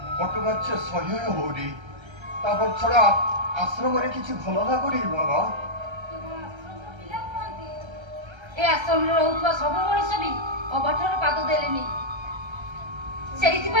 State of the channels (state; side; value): late; left; 1.3 ms